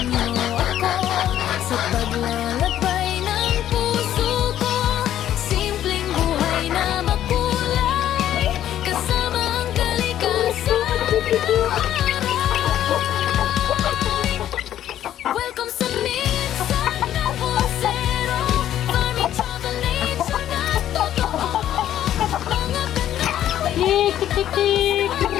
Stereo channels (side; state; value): right; quieter; 11.6 dB